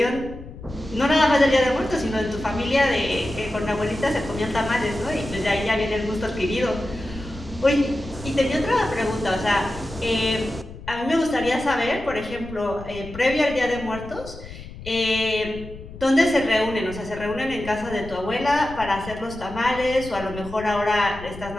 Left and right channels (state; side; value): noise; left; rumble, 14 dB below the sound